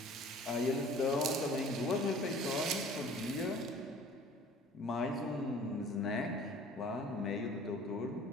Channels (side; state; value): both; normal; correlation 0.49